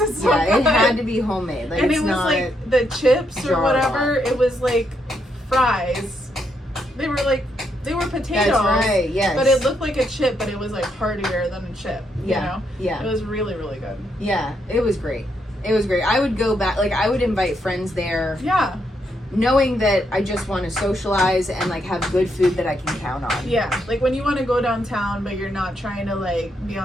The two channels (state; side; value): normal; both; correlation 0.78